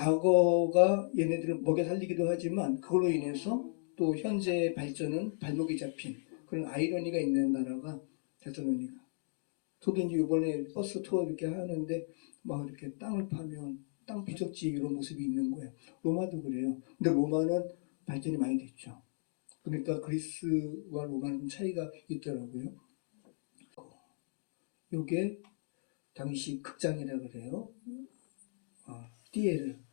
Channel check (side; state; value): right; silent; digital silence